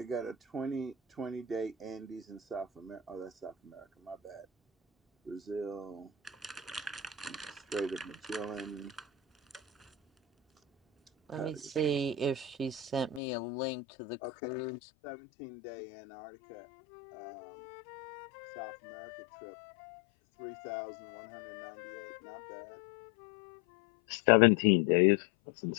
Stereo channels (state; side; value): drops out; right; at 13.2 s